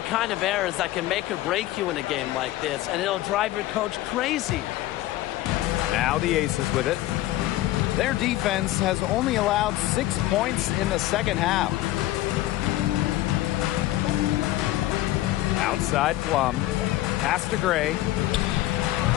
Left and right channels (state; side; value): quieter; right; 15.6 dB